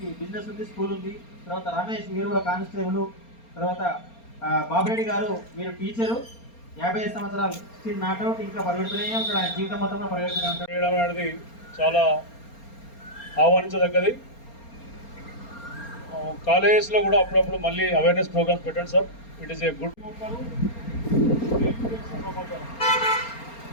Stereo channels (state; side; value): late; right; 4.3 ms